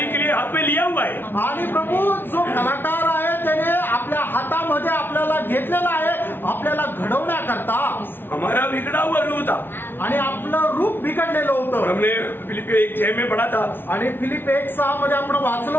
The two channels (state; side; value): late; right; 0.10 ms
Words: के लिए हाथ में लिया हुआ है। आणि प्रभू जो कलाकार आहे त्याने आपल्या हातामध्ये आपल्याला घेतलेला आहे आपल्याला घडवण्याकरता। हमारा बिगड़ा हुआ रूप था आणि आपलं रूप बिघडलेलं और होतं। हमने फिलिपियो 1:6 में पढ़ा था आणि फिलिप 1:6 मध्ये आपण वाचलं